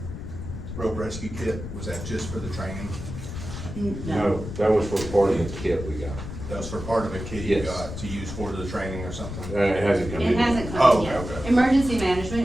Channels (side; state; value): left; noise; rumble, 8 dB below the sound